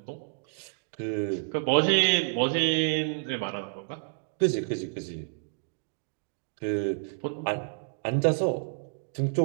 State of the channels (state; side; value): silent; left; digital silence